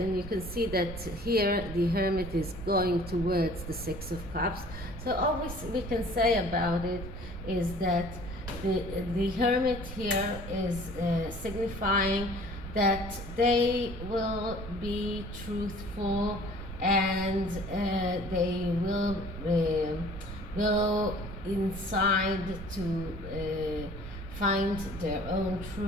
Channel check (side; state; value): right; noise; rumble, 10 dB below the sound